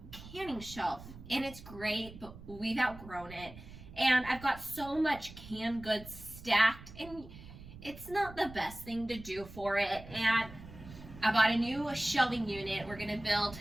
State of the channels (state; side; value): noise; right; rumble, 16 dB below the sound